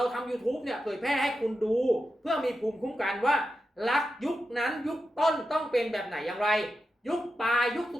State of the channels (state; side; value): normal; both; correlation 0.89